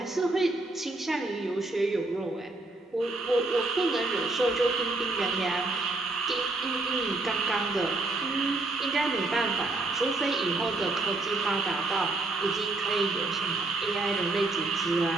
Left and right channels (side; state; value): left; quieter; 3.1 dB